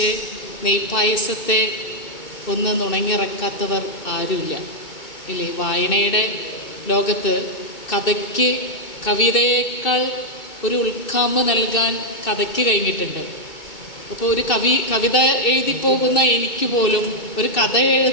നെയ്പായസത്തെ ഒന്ന് നുണങ്ങിറക്കാത്തവർ ആരുമില്ല ഇല്ലേ? വായനയുടെ ലോകത്ത് കഥയ്ക്ക് കവിതയേക്കാൾ ഒരു ഉൾക്കാമ്പ് നൽകാൻ കഥയ്ക്ക് കഴിഞ്ഞിട്ടുണ്ട്. അപ്പോൾ ഒരു കവിത എഴുതിപ്പോകുന്ന എനിക്ക് പോലും ഒരു കഥ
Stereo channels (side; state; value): right; late; 2.6 ms